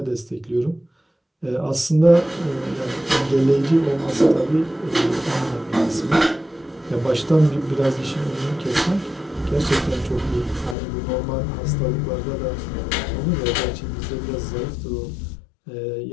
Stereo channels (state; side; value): drops out; right; at 10.8 s